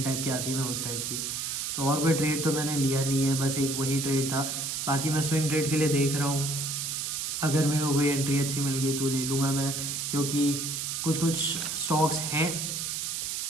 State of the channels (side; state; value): right; noise; hiss, 2 dB below the sound